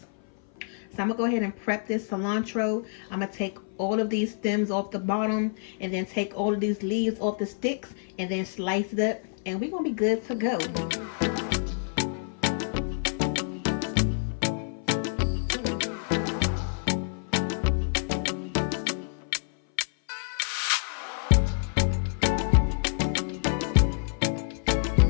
So I'm gonna go ahead and prep this cilantro. I'm gonna take all of these stems off the bottom, and then take all of these leaves off the sticks, and then slice it up, and we're gonna be good to go.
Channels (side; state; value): right; silent; 57 dB below the other